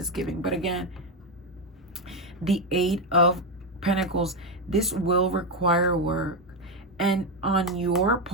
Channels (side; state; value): both; normal; correlation 0.08